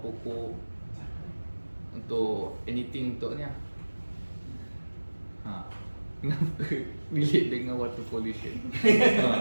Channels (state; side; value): inverted; both; correlation -1.00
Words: untuk anything untuk ni. Kenapa relate dengan water pollution?